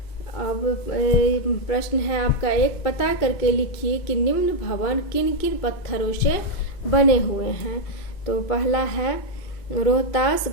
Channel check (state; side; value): late; right; 2.5 ms